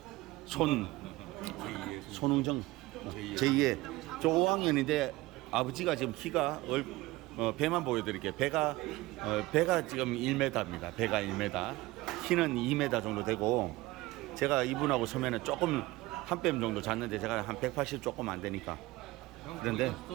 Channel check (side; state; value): left; quieter; 19.6 dB